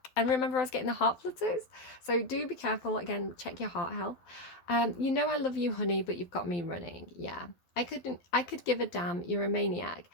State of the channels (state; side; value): late; right; 12 ms